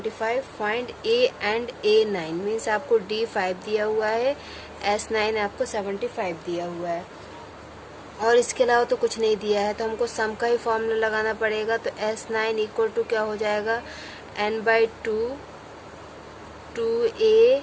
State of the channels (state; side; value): identical; both; correlation 1.00